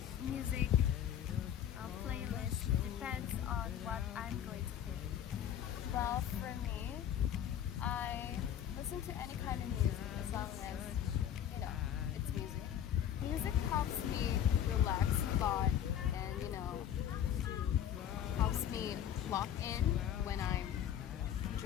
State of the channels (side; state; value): right; quieter; 10.0 dB